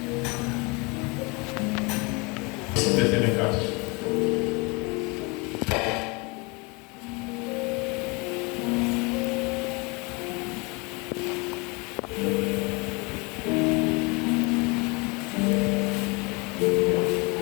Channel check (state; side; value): quieter; right; 28.4 dB